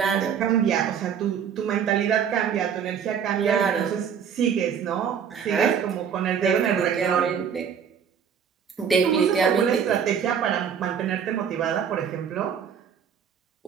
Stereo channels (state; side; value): quieter; left; 7.6 dB